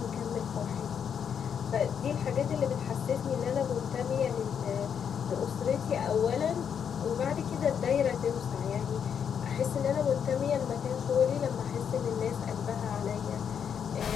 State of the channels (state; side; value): quieter; right; 7.7 dB